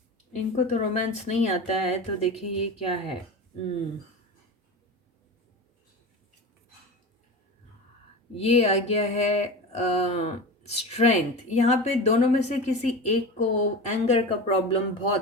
इनको तो रोमांस नहीं आता है, तो देखिए ये क्या है। ये आ गया है स्ट्रेंथ। यहाँ पे दोनों में से किसी एक को एंगर का प्रॉब्लम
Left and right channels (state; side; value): normal; both; correlation 0.28